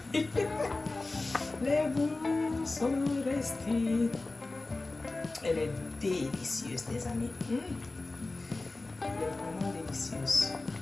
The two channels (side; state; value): right; quieter; 3.2 dB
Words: Les boules sont restées. Elle est délicieuse, les amis. Elle est vraiment délicieuse.